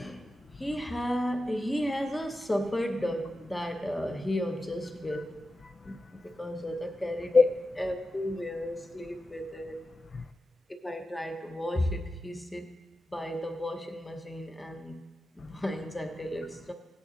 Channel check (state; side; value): normal; both; correlation 0.91